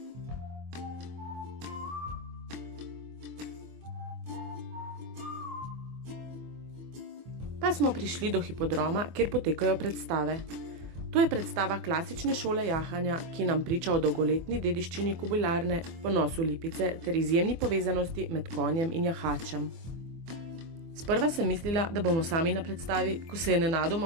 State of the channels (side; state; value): left; late; 24 ms